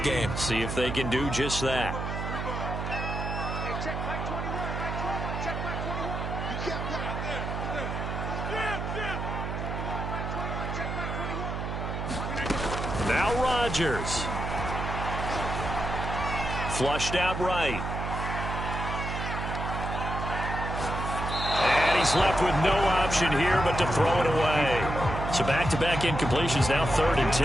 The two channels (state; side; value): noise; right; hum, 4 dB below the sound